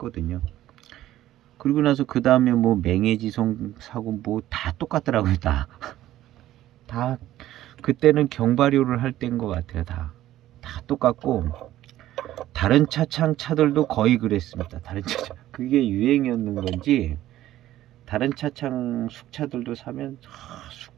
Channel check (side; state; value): left; quieter; 13.9 dB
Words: 그리고 나서 그 다음에 뭐 맹해지송 사고 뭐 다 똑같더라고요. 다 그때는 경발효를 할 때인 것 같아요. 다 똑같고 다른 차들도 거의 그랬습니다. 다른 차창 그게 유행이었는 건지 다른 차창 숙차들도 사면